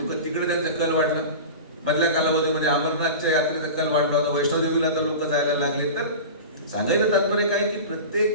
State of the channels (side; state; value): both; inverted; correlation -0.30